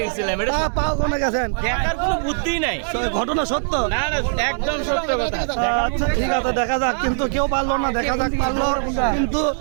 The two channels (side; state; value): left; silent; 64 dB below the other